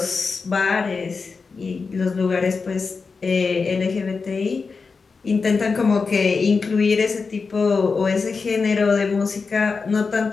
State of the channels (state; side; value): quieter; right; 4.7 dB